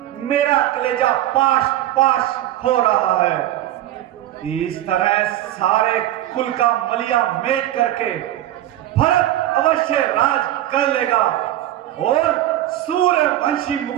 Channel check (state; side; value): quieter; left; 13.6 dB